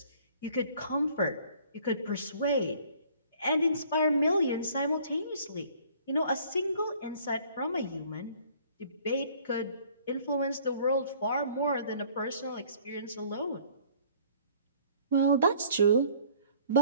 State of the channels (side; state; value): both; inverted; correlation -0.55